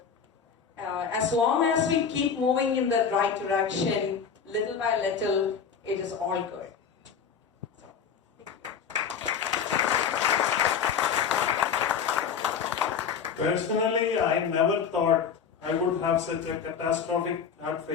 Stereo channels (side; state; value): right; quieter; 6.9 dB